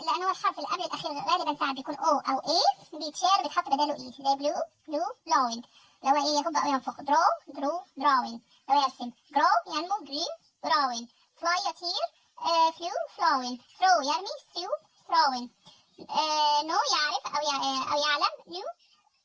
لأن هو الحرف اللي قبل الأخير غالبا ساعات بيكون O أو A، بيتشال بيتحط بداله E زي blue blowing، لو هو إيه يهب أو ينفخ. drawing لو يرسم. grow ينمو green growing. fly يطير flew flowing. throw يرمي throwing. know يعرف أو يعلم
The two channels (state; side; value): identical; both; correlation 1.00